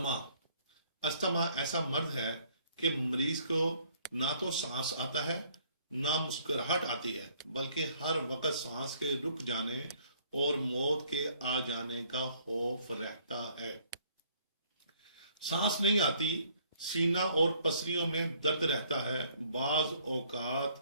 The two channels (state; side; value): inverted; both; correlation -0.62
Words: استما ایسا مرض ہے کہ مریض کو نہ تو سانس آتا ہے نہ مسکراہٹ آتی ہے، بلکہ ہر وقت سانس کے رک جانے اور موت کے آ جانے کا خوف رہتا ہے۔ سانس نہیں آتی، سینہ اور پسلیوں میں درد رہتا ہے، بعض اوقات